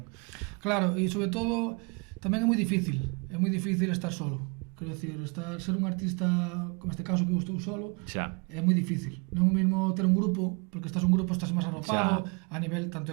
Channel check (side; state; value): left; quieter; 32.9 dB